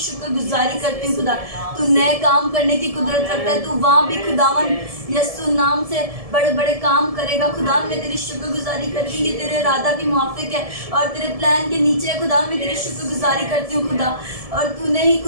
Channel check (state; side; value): late; left; 1.7 ms